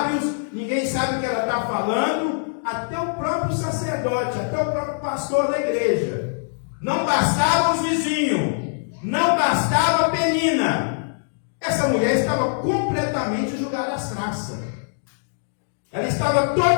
ninguém sabe o que ela está falando, até o próprio sacerdote, até o próprio pastor da igreja. Não bastava os vizinhos, não bastava a Penina. Essa mulher estava completamente jogada às traças. Ela estava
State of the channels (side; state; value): right; silent; digital silence